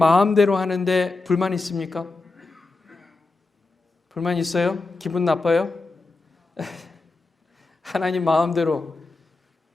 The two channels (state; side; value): quieter; right; 3.5 dB